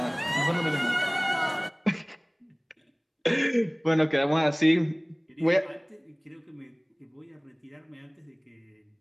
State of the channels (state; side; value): identical; both; correlation 1.00